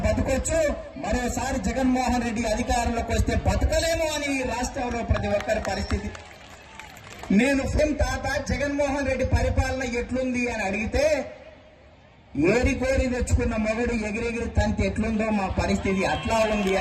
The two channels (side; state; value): both; identical; correlation 1.00